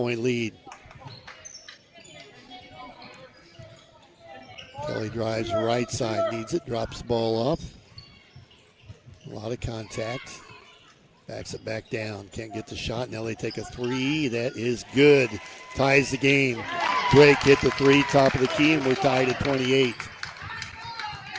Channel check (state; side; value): identical; both; correlation 1.00